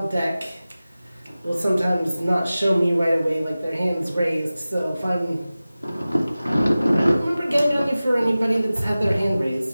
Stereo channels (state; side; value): inverted; both; correlation -0.97